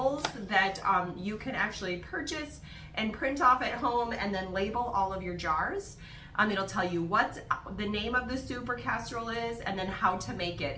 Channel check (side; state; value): both; identical; correlation 1.00